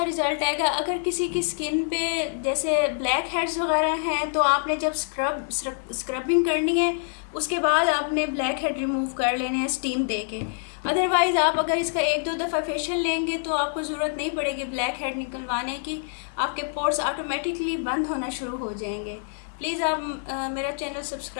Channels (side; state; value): right; silent; 61 dB below the other